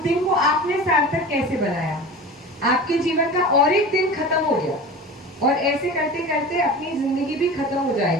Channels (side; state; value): both; normal; correlation 0.34